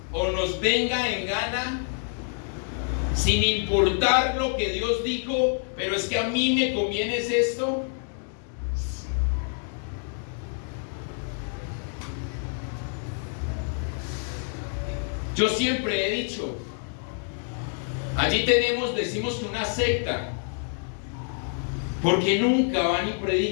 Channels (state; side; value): silent; right; 55 dB below the other